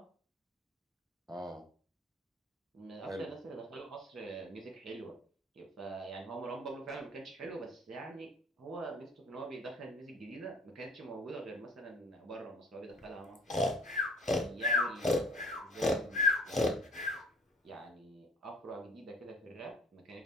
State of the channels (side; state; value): both; normal; correlation 0.53